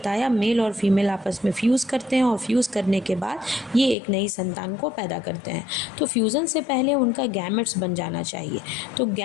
मेल और फीमेल आपस में फ्यूज़ करते हैं और फ्यूज़ करने के बाद ये एक नई संतान को पैदा करते हैं। तो फ्यूज़न से पहले उनका गैमेट्स बन जाना चाहिए। तो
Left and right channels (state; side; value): drops out; right; at 4.0 s